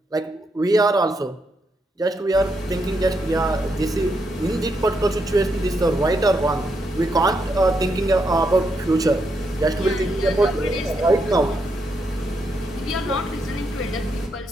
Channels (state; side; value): normal; both; correlation 0.80